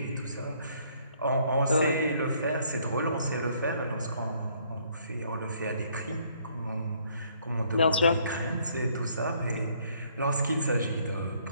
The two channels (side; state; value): both; inverted; correlation -0.65